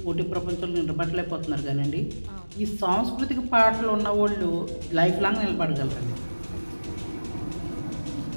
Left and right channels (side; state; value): both; inverted; correlation -1.00